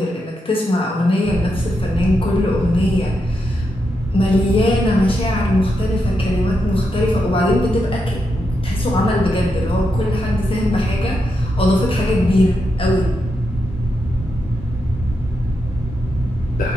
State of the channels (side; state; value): both; normal; correlation 0.84